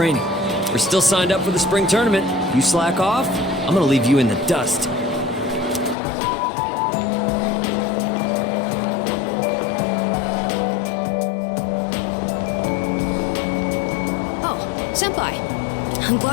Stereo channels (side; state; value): right; drops out; at 6.0 s